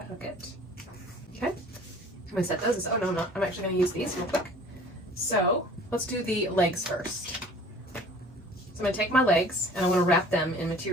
I hook it. Okay, I'm going to set those aside. Oh no, I'm not. I'm actually going to use these real quick. So let's do the legs first. So I'm going to take my legs and I want to wrap them in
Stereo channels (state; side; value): normal; both; correlation 0.48